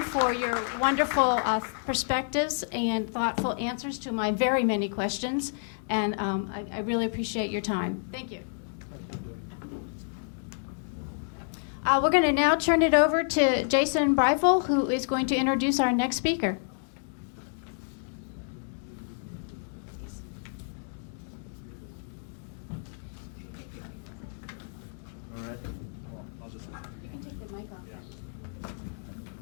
for your wonderful perspectives and thoughtful answers to my very many questions. And I really appreciate your time. Thank you. We're going to now turn it over to Jason Breifel, who is going to introduce our next speaker. All right. Well, I'll just.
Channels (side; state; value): right; silent; digital silence